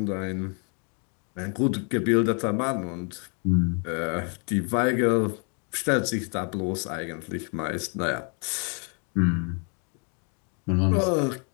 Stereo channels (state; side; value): quieter; right; 39.2 dB